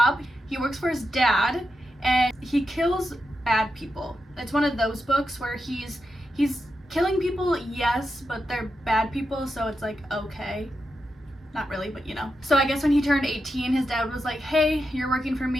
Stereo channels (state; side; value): normal; both; correlation 0.87